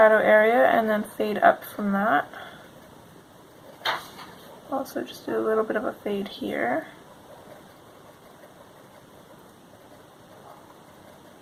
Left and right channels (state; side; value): identical; both; correlation 1.00